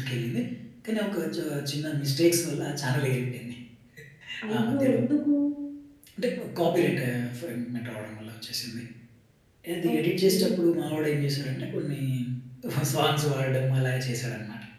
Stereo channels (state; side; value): identical; both; correlation 1.00